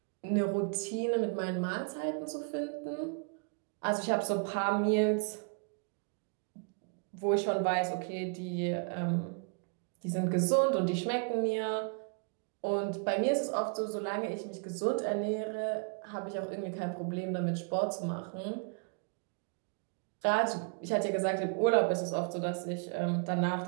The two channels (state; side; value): quieter; left; 38.1 dB